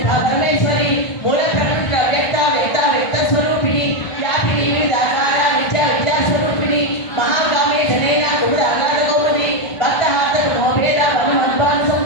పరమేశ్వరి మూల ప్రకృతి వ్యక్త వ్యక్త వ్యక్త స్వరూపిణి వ్యాపిని వివిధాకార విద్యా విద్యా స్వరూపిణి మహాగామి జనైన కుముద ఆగాధ కౌముది భక్తహాత మోభేద వనుమద్వాన్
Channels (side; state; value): right; late; 1.5 ms